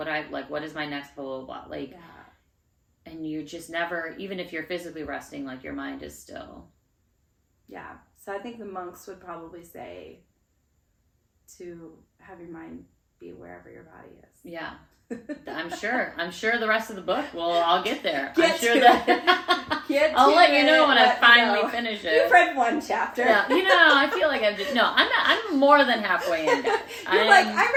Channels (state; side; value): identical; both; correlation 1.00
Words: is my next blah, blah, blah, like, and you just never, even if you're physically resting, like your mind is still. Yeah. So I think the monks would probably say to have your mind be wherever your body is. Yeah. I'm sure the rest of the book I'll get there. Get I'm sure to that Get I'll to let you it, know when I let me finally know. finish it. You've read one chapter. Yeah, I feel like I'm more than halfway in, guys. You're like, I